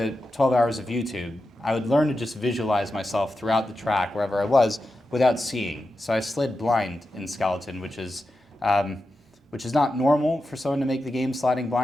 12 hours of YouTube, I would learn to just visualize myself throughout the track, wherever I was, without seeing. So I slid blind in skeleton, which is not normal for someone to make the game sliding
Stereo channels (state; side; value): normal; both; correlation 0.90